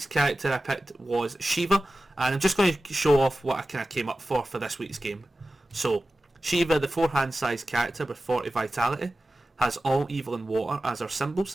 character I picked was Shiva, and I'm just going to show off what I kind of came up for this week's game. So, Shiva, the 4-hand size character with 40 vitality, has all evil and water as our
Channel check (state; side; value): normal; both; correlation 0.95